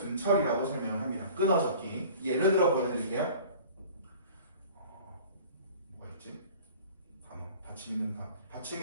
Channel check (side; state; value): both; inverted; correlation -0.45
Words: 설명을 합니다. 끊어 적기. 예를 들어 보여드릴게요. 받침